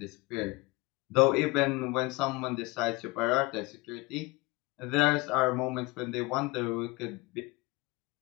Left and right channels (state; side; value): quieter; right; 23.8 dB